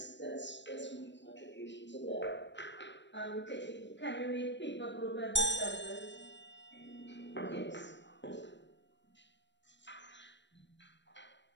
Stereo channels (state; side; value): late; right; 0.52 ms